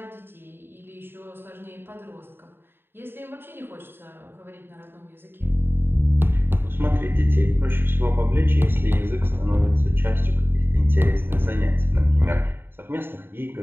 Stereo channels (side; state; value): left; late; 0.10 ms